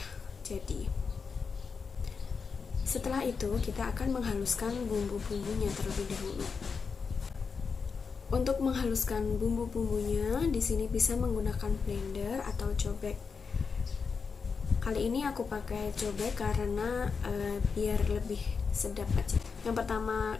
jadi. Setelah itu kita akan menghaluskan bumbu-bumbunya terlebih dahulu. Untuk menghaluskan bumbu-bumbunya di sini bisa menggunakan blender atau cobek. Kali ini aku pakai cobek karena biar lebih sedap aja. Yang pertama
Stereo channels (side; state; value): right; quieter; 5.4 dB